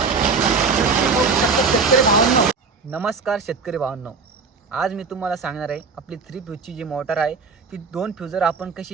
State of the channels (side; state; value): left; quieter; 4.9 dB